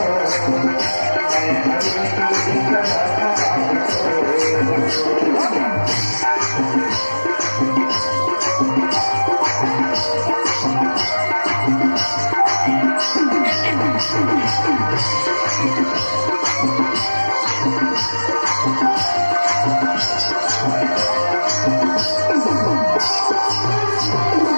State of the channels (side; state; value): both; inverted; correlation -1.00